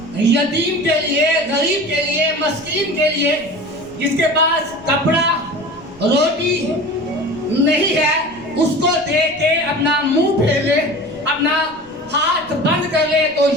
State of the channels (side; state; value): left; noise; rumble, 26 dB below the sound